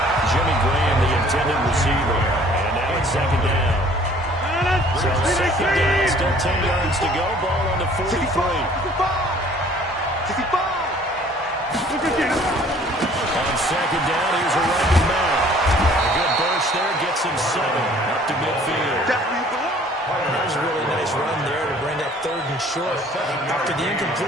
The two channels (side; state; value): both; normal; correlation 0.55